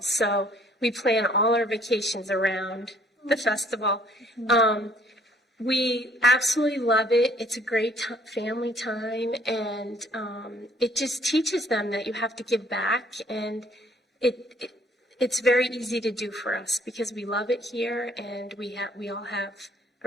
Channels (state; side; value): normal; both; correlation 0.61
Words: So we plan all our vacations around the festival. We absolutely love it. It's a great family time, and it just teaches them that you have to give back, and it's very easy to do for us because we love it here, and we all have